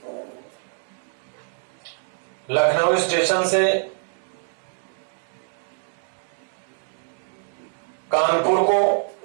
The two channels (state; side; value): silent; left; digital silence